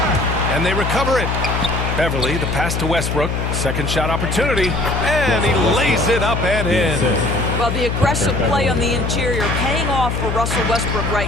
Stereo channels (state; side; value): noise; left; hum, 1 dB below the sound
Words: And they recover it. Beverly, the pass to Westbrook. Second shot opportunity. And he lays it up and in. Well, the aggressive play on the interior paying off for Russell Westbrook